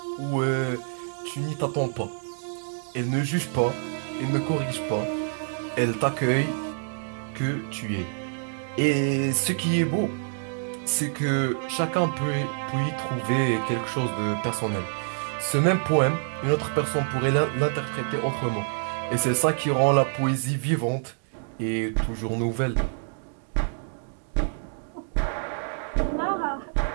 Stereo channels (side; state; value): left; silent; digital silence